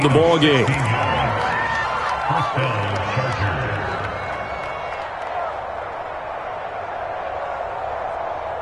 the ball game.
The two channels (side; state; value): both; identical; correlation 1.00